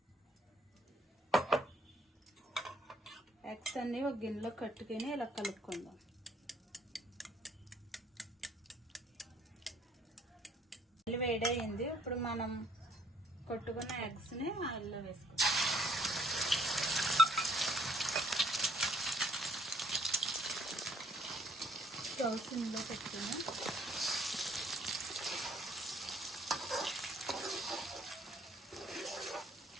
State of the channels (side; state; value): both; normal; correlation 0.64